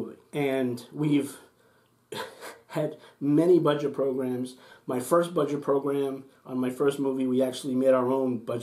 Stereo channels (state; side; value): identical; both; correlation 1.00